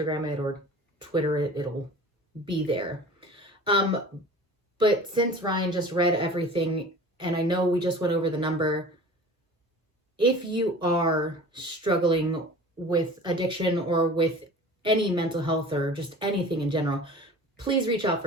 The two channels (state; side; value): normal; both; correlation 0.41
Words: it or Twitter it, it'll be there. But since Ryan just read everything, and I know we just went over the number, if you are struggling with addiction or with any mental health or just anything in general, please reach out